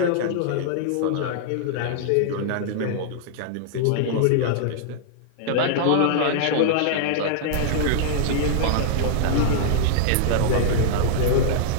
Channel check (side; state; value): both; different; correlation -0.01